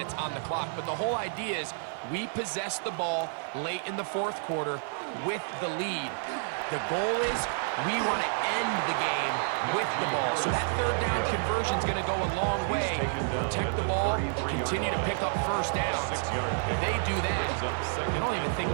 on the clock, but the whole idea is we possess the ball late in the 4th quarter with the lead. The goal is we want to end the game with the ball. So that 3rd down conversion is going to go a long way. Protect the ball, continue to pick up 1st downs. If they do that, they don't even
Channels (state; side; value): silent; left; digital silence